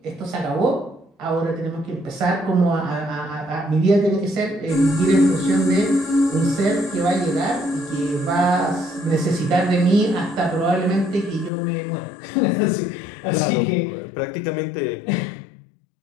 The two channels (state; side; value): drops out; right; at 11.5 s